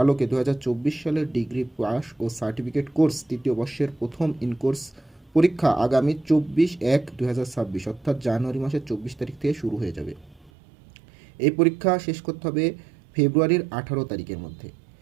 আলোকে 2024 সালের ডিগ্রি পাস ও সার্টিফিকেট কোর্স তৃতীয় বর্ষের প্রথম ইনকোর্স পরীক্ষা আগামী 24/1/2026 অর্থাৎ জানুয়ারি মাসের 24 তারিখ থেকে শুরু হয়ে যাবে। এই পরীক্ষা শেষ করতে হবে ফেব্রুয়ারির 18 তারিখের মধ্যে,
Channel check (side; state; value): left; drops out; at 10.5 s